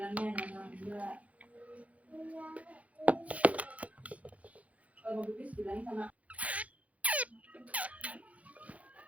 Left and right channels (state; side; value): late; left; 0.067 ms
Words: jangan enggak. Kalau mau pipis bilangin sama